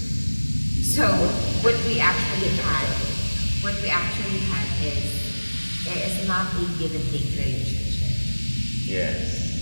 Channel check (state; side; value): inverted; both; correlation -1.00